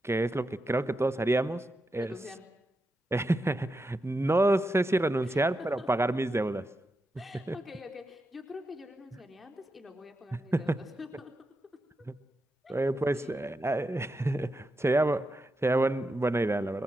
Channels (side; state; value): both; normal; correlation 0.87